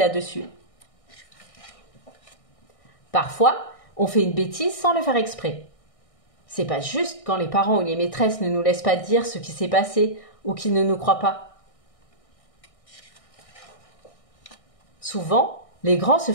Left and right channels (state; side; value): late; right; 1.6 ms